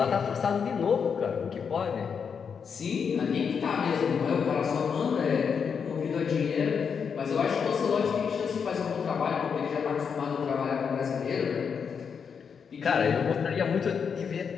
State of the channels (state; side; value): quieter; right; 6.5 dB